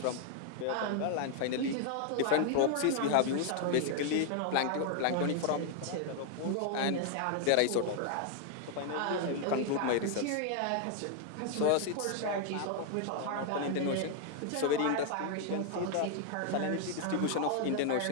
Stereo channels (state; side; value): different; both; correlation 0.00